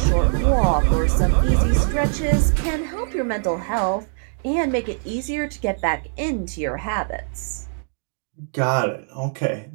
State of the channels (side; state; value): left; silent; digital silence